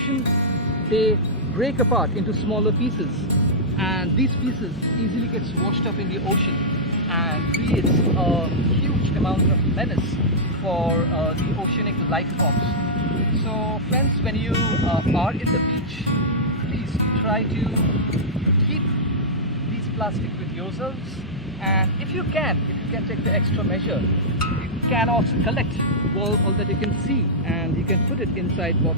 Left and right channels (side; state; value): both; normal; correlation -0.10